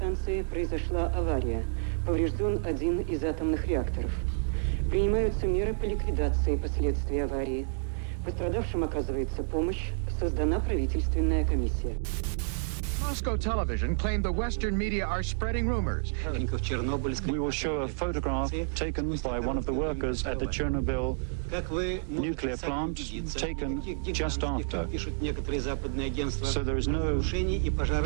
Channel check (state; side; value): silent; left; digital silence